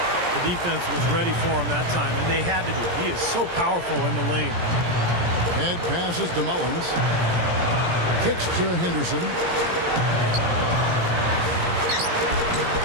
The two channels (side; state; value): left; late; 17 ms